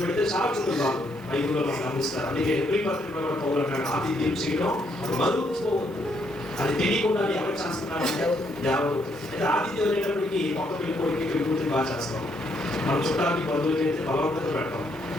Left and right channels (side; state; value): left; noise; hiss, 28 dB below the sound